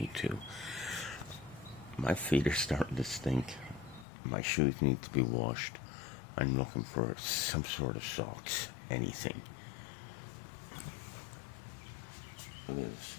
My feet are starting to stink. My shoes need to be washed. I'm looking for some sort of socks, anything. Liz,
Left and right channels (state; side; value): drops out; right; at 4.0 s